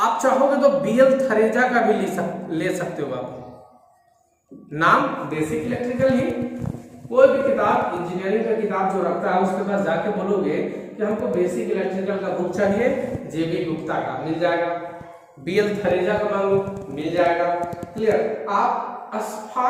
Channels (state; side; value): identical; both; correlation 1.00